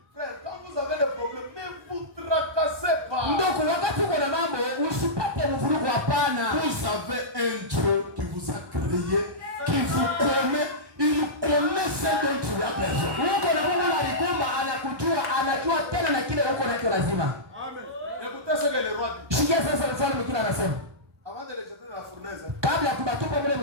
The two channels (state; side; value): late; left; 1.2 ms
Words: Frère, quand vous avez des problèmes, ne vous tracassez pas. Ndugu, wakati uko na mambo usipate mvurugo, hapana. Vous avez un Dieu qui vous a créé, qui vous connaît, il connaît ce dont tu as besoin. Uko na Mungu alikumba, anakujua, anajua tena na kile uko nacho lazima. Amen. Écoutez ce que le roi dit. Sikia sasa mfalme kile anasema. Avant de les jeter dans la fournaise, Kabla ya kubatupa mle